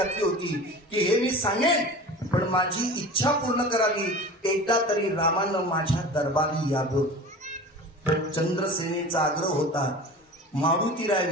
होती की हे मी सांगेन पण माझी इच्छा पूर्ण करावी, एकदा तरी रामानं माझ्या दरबारी यावं. चंद्रसेनेचा आग्रह होता. मारुतीराय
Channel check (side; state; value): both; normal; correlation 0.36